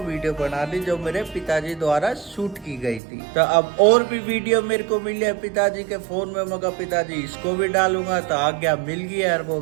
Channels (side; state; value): left; drops out; at 3.0 s